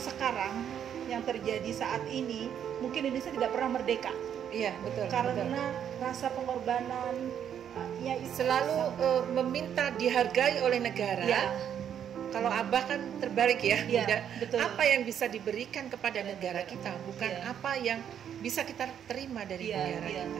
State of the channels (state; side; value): quieter; left; 9.1 dB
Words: yang terjadi saat ini, mungkin Indonesia tidak pernah merdeka. Iya betul. Karena rasa pengorbanan selalu meminta dihargai oleh negara. Ya. Kalau Abah kan terbalik ya, Ya, Bunda. betul. Apa yang bisa diberikan kepada negara kita, bukan Ya. apa yang bisa kita terima dari negara ya, kita.